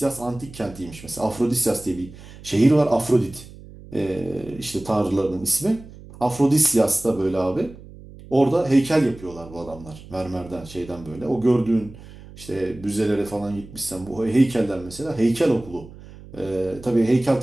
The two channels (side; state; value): right; noise; hum, 18 dB below the sound